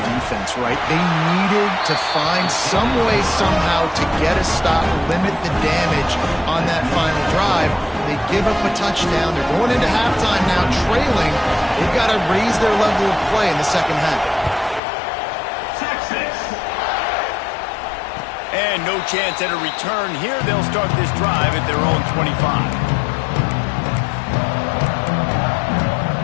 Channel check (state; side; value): drops out; right; at 14.8 s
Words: defense, right? They needed to find some way, somehow, to get a stop, limit the damage on that final drive. They give up a touchdown. They're going into halftime now, trailing. They've got to raise their level of play in the second half. And no chance at a return here. They'll start this drive at their own 25.